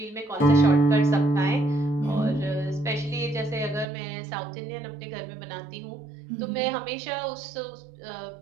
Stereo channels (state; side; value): drops out; left; at 3.9 s